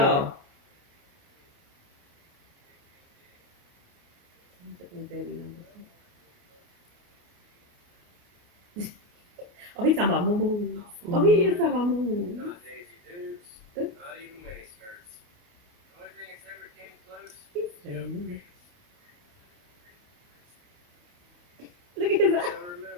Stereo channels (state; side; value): late; left; 28 ms